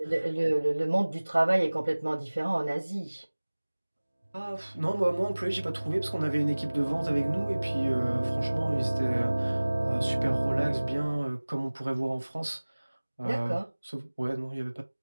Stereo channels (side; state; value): both; inverted; correlation -1.00